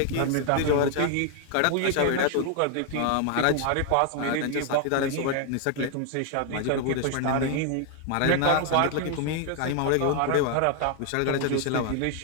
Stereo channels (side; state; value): both; different; correlation 0.00